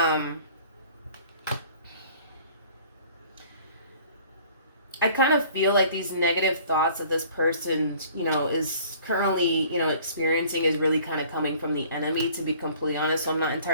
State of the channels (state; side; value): inverted; both; correlation -0.52